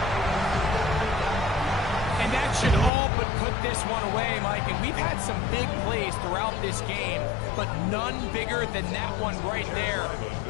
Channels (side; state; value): right; drops out; at 2.9 s